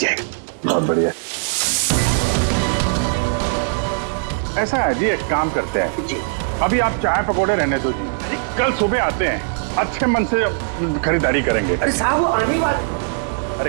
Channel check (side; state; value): left; silent; 66 dB below the other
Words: बहुत बढ़िया। ऐसा है जी, एक काम करते हैं जी, अभी आप चाय पकौड़े रहने दो जी, कल सुबह आते हैं, अच्छे मन से खरीदारी करेंगे। अरे साहब वो आने वाले।